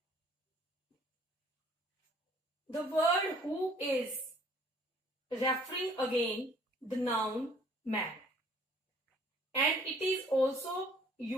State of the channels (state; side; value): normal; both; correlation 0.57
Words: The word who is referring again the noun man, and it is also